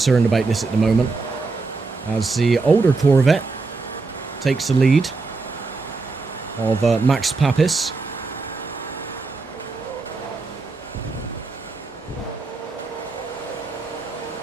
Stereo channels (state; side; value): quieter; left; 3.9 dB